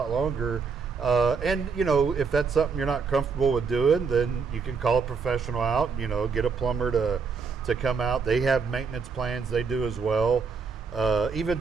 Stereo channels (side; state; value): left; quieter; 5.3 dB